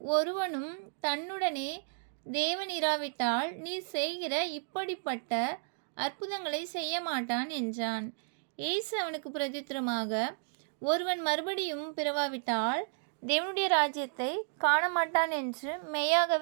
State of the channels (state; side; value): silent; left; digital silence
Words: ஒருவனும் தன்னுடனே தேவன் இராவிட்டால் நீர் செய்கிற இப்படிப்பட்ட அற்புதங்களை செய்ய மாட்டான் என்றான். இயேசு அவனுக்கு பிரதித்திரமாக, ஒருவன் மறுபடியும் பிறவாவிட்டால் தேவனுடைய ராஜ்யத்தை காணமாட்டான் என்று